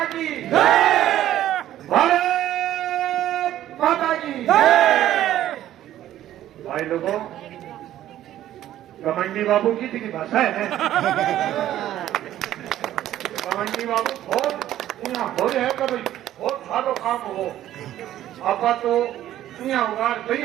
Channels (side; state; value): left; quieter; 12.7 dB